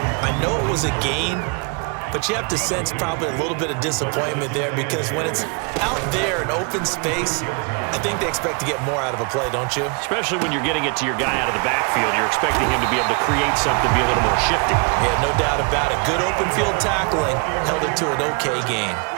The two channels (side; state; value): left; quieter; 32.7 dB